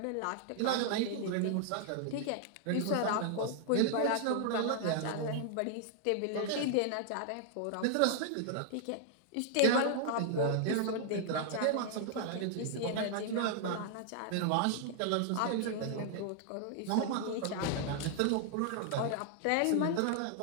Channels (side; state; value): both; different; correlation 0.00